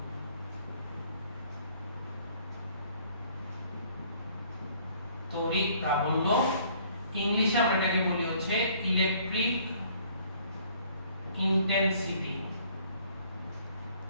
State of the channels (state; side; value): inverted; both; correlation -0.59